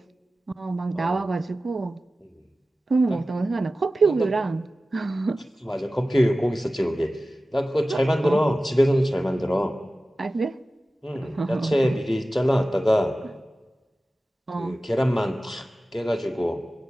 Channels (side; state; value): both; normal; correlation 0.95